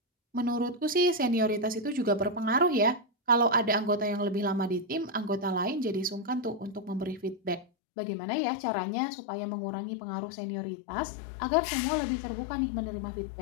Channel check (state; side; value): drops out; right; at 7.7 s